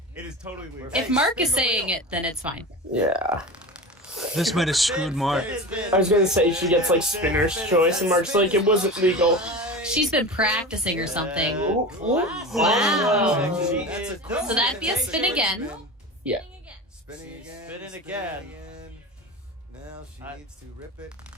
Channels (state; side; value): normal; both; correlation 0.29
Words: It is totally legal. If Mark is saying it, then it's fine. Yeah. This might have screwed Mark. I was gonna say she gets like spinner's choice, and Mark's like, it wasn't legal. She's been practicing or something. Ooh, ooh. Wow. She is So that'd be a spin again. Yeah. Spinning again. Spinning again. Now she needs to rip it.